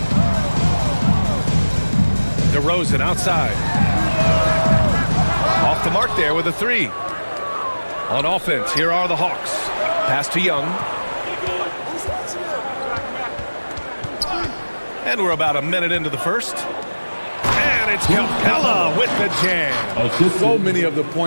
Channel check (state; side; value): inverted; both; correlation -1.00